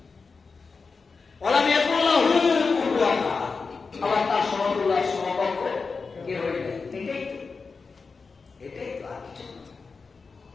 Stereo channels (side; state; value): right; quieter; 4.6 dB